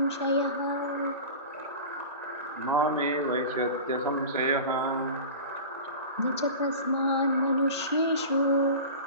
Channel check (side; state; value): both; inverted; correlation -0.33